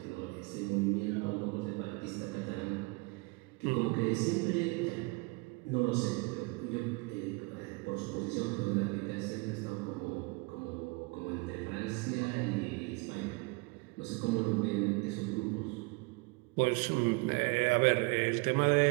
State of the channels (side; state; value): left; quieter; 27.7 dB